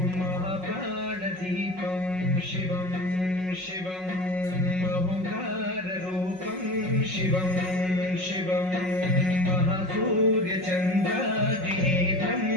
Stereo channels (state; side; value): late; left; 5.4 ms